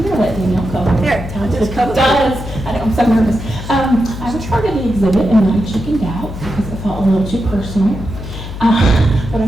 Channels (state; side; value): noise; left; hum, 9 dB below the sound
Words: going to let Danielle cover. Here, just cover. I'm so nervous. I was part of the exhibit and I chickened out because I felt a little too personal. But